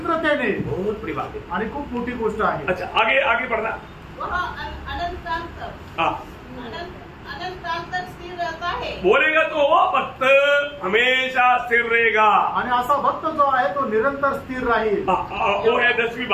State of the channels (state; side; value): identical; both; correlation 1.00